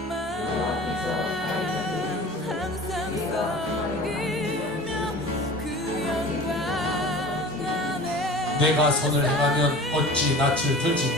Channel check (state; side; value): normal; both; correlation 0.40